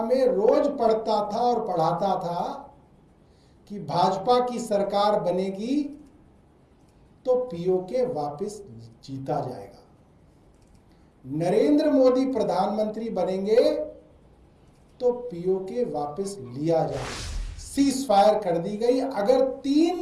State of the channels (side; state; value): both; identical; correlation 1.00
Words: में रोज पढ़ता था और पढ़ाता था कि भाजपा की सरकार बनेगी तो पीओके वापस जीता जाएगा, नरेंद्र मोदी प्रधानमंत्री बनेंगे तो पीओके वापस लिया जाएगा। सीज फायर कर दी गई। अगर